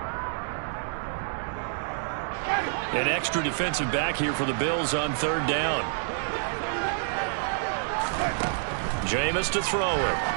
An extra defensive back here for the Bills on third down. Jameis to throw it.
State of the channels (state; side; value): silent; left; digital silence